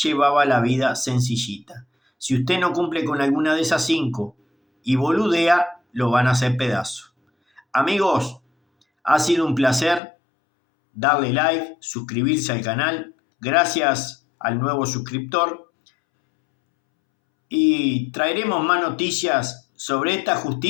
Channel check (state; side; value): drops out; right; at 10.0 s